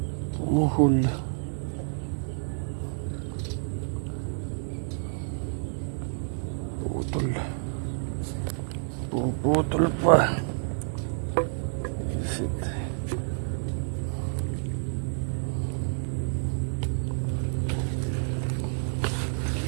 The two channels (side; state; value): left; silent; 59 dB below the other